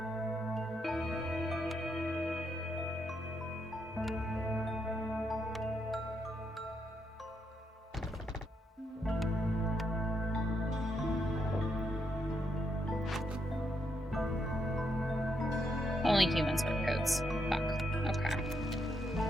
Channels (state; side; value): normal; both; correlation 0.79